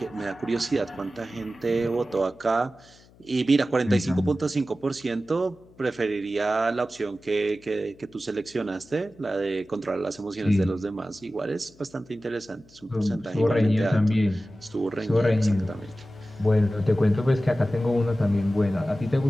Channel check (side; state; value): left; noise; hum, 27 dB below the sound